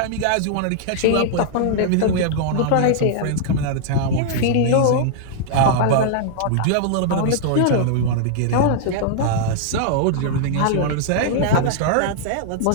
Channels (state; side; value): different; both; correlation -0.01